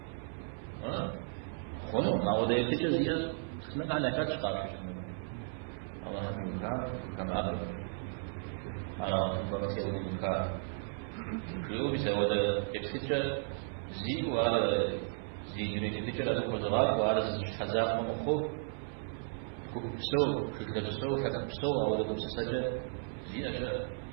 خونو ما وده يتجزئ استمع على كاتش قارش الله هم يوكا كان أب على بقتي أودي يوكا شو بيسوي ده يبسيتش زي وعلى زي دنيا تيتش على كوزغات وعلى خزاق ومخو كوبسو كتلبسو كتبسو أو ده بسسجة زي أشياء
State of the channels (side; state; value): left; silent; 55 dB below the other